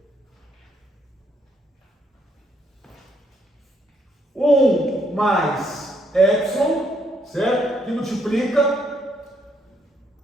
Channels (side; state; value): both; normal; correlation 0.72